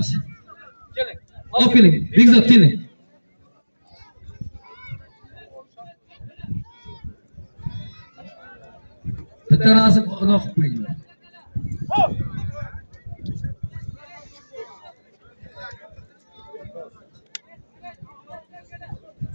Keling. Olib keling. Bekzod keling. Bitta rasm uloq qilib qo'yinglar.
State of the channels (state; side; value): inverted; both; correlation -1.00